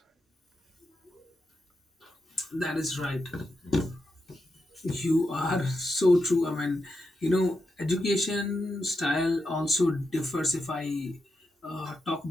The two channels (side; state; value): both; normal; correlation 0.86